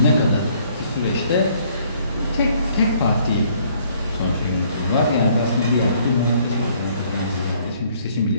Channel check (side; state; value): both; inverted; correlation -0.63